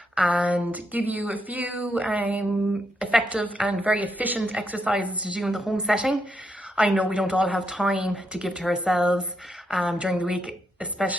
and give you a few effective and very efficient exercises to do in the home setting. I know we don't all have time to give to ourselves during the week,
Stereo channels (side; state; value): both; normal; correlation 0.80